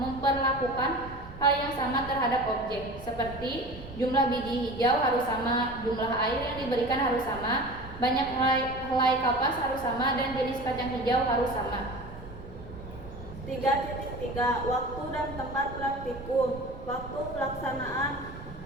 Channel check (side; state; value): right; noise; rumble, 15 dB below the sound